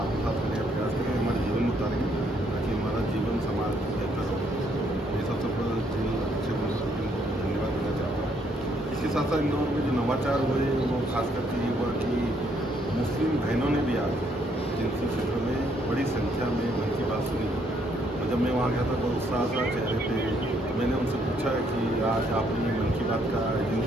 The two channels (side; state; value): both; normal; correlation 0.70